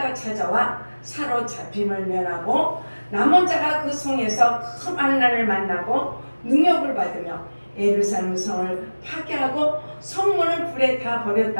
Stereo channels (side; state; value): both; inverted; correlation -1.00